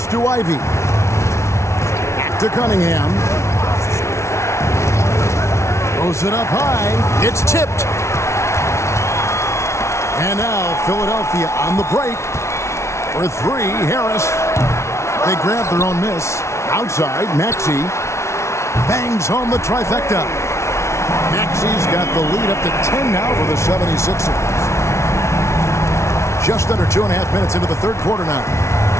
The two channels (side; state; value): right; late; 0.13 ms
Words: to Ivy. Back to Cunningham. Throws it up high. It's tipped. And now Philadelphia on the break. For 3, Harris. They grab their own miss. Outside, Maxey bangs home the trifecta. Maxey's got the lead up to 10 now for the 76ers. Just under 2.5 minutes into the third quarter now.